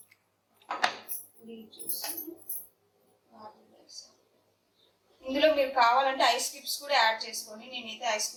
ఇందులో మీరు కావాలంటే ఐస్ క్యూబ్స్ కూడా యాడ్ చేసుకోండి. నేనైతే ఐస్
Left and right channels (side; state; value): both; identical; correlation 1.00